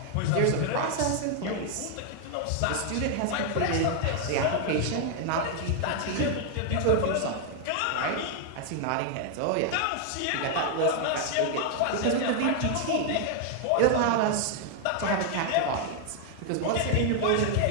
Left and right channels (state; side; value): different; both; correlation 0.00